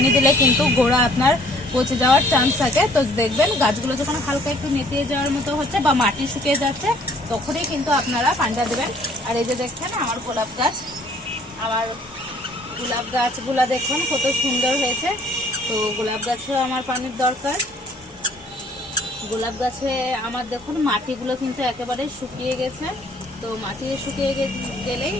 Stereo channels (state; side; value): normal; both; correlation 0.59